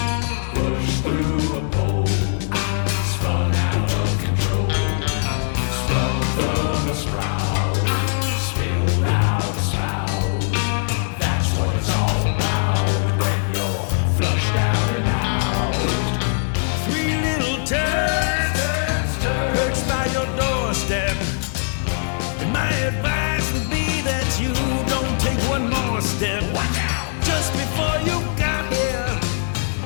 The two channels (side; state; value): right; silent; 65 dB below the other